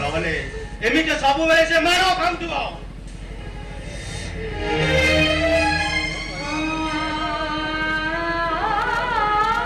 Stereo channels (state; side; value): identical; both; correlation 1.00